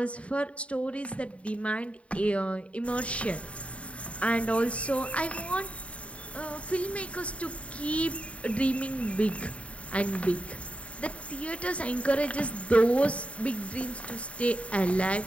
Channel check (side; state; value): right; late; 0.063 ms